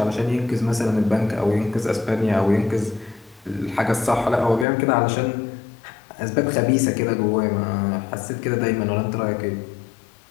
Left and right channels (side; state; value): right; drops out; at 4.7 s